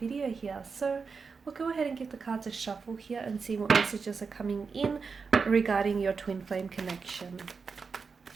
here. So we'll go ahead and give the cards a shuffle here and see what messages are coming in regarding your twin flame connection.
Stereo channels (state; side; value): quieter; left; 5.1 dB